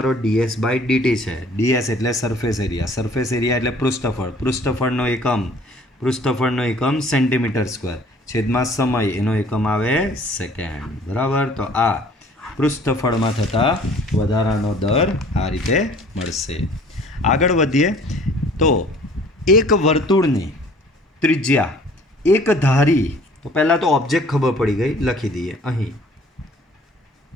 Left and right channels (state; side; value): normal; both; correlation 0.53